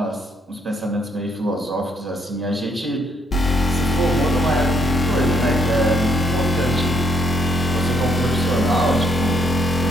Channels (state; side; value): normal; both; correlation 0.71